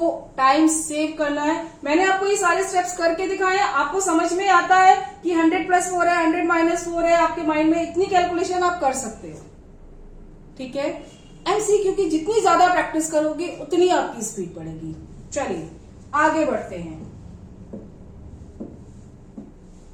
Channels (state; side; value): identical; both; correlation 1.00